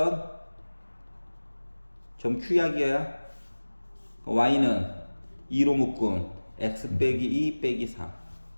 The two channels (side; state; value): both; inverted; correlation -1.00